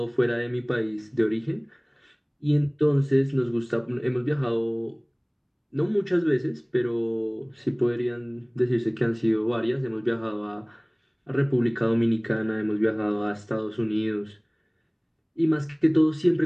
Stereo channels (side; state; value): both; identical; correlation 1.00